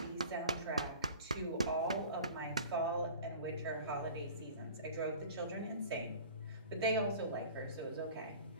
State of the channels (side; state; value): both; inverted; correlation -0.41